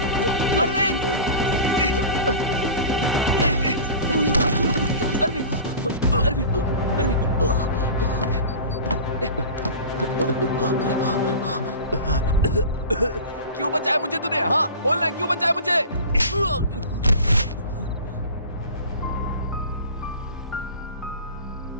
अरविंद! अरविंद! अरविंद! अरविंद! क्यों बचाया मुझे तूने? हाँ बोलना, क्यों बचाया मुझे?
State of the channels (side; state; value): both; inverted; correlation -0.35